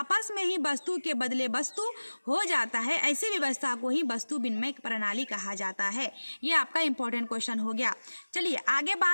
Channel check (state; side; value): inverted; both; correlation -1.00